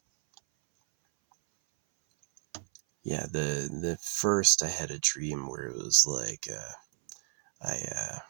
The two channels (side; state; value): left; silent; 57 dB below the other